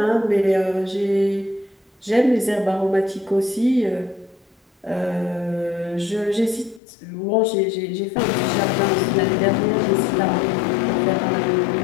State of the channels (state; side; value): drops out; right; at 6.8 s